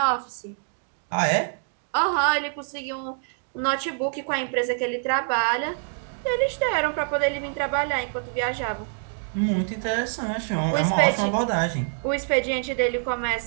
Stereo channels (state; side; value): silent; left; digital silence